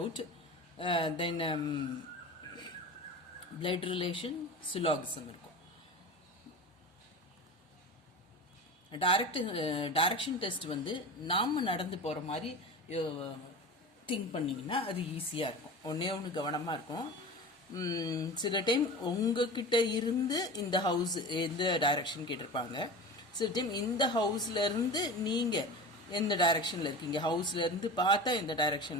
then blood relation, syllogism இருக்கும். டைரக்ஷன் டெஸ்ட் வந்து நாம் நடந்து போகிற மாதிரி திங்க் பண்ணிங்கன்னா அது ஈஸியாக இருக்கும். ஒன்று கவனமாக இருக்கும். சில டைம் உங்ககிட்ட இருந்து இந்த ஹவுஸ் எந்த டைரக்ஷன் கேட்டிருப்பாங்க. சில டைம் இந்த ஹவுஸ்லேருந்து நீங்கள் எந்த டைரக்ஷனில் இருக்கீங்க, ஹவுஸ்லேருந்து பார்த்தா எந்த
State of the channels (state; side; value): normal; both; correlation 0.31